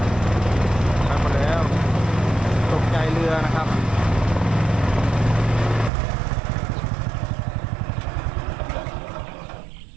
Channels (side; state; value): left; drops out; at 5.9 s